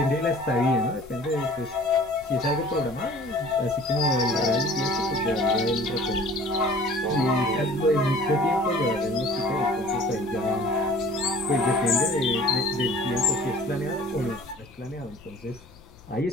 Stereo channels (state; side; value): noise; left; rumble, 25 dB below the sound